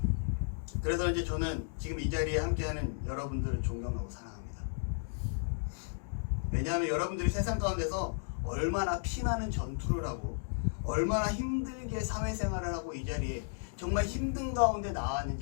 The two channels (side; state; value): right; silent; digital silence